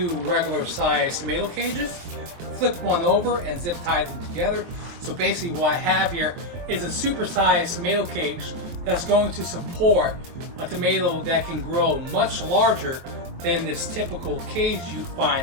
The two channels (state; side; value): late; left; 23 ms